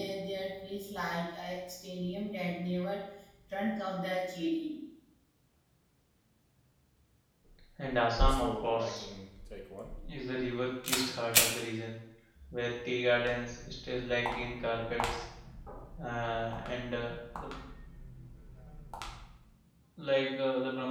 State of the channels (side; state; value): both; identical; correlation 1.00